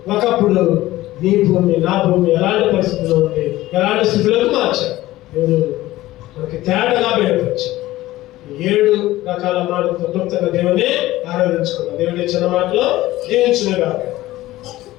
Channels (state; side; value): quieter; right; 16.6 dB